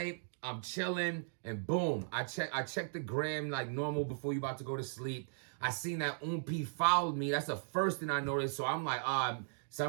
I'm chilling, and boom, I checked the gram like normal before you about to go to sleep. I seen that OUN P followed me. That's the first thing I noticed. So I'm like, so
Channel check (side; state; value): left; silent; digital silence